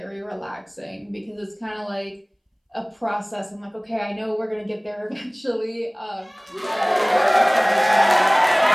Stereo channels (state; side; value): identical; both; correlation 1.00